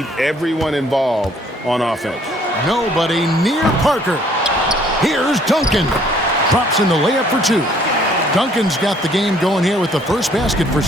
everyone involved on offense. Nobody near Parker. Here's Duncan. Drops in the layup for two. Duncan's got the game going here with the first basket for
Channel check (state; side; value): normal; both; correlation 0.61